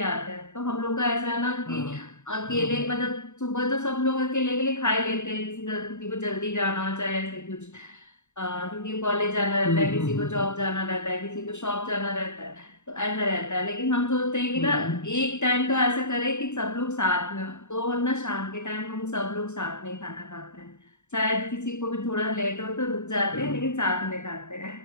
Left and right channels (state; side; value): late; right; 0.84 ms